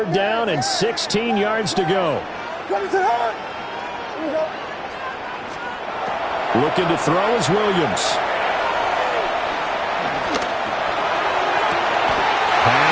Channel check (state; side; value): identical; both; correlation 1.00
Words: down and 16 yards to go. Looking to throw is Williams.